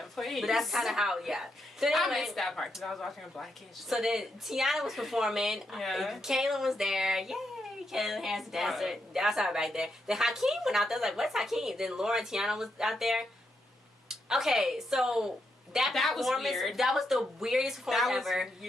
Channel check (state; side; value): normal; both; correlation 0.81